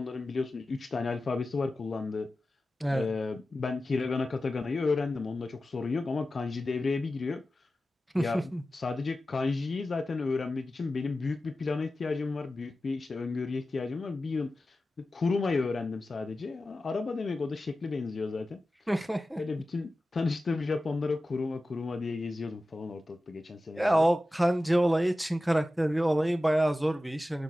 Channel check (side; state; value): both; normal; correlation 0.94